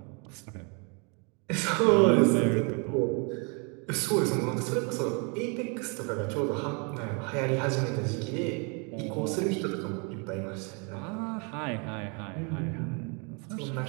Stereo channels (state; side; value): quieter; left; 34.4 dB